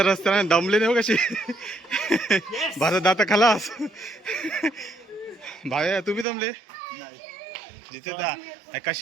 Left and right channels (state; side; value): drops out; left; at 6.2 s